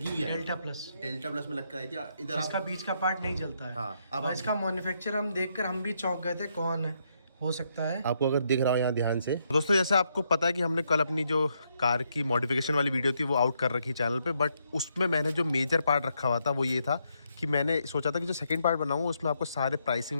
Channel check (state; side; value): inverted; both; correlation -0.77